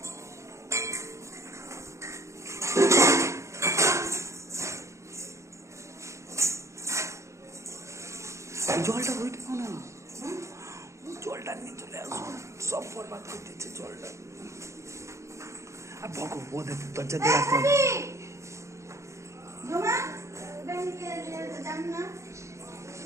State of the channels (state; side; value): late; left; 0.14 ms